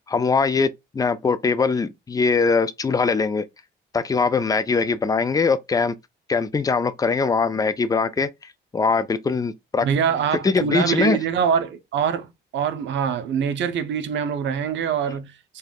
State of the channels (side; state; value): both; normal; correlation 0.42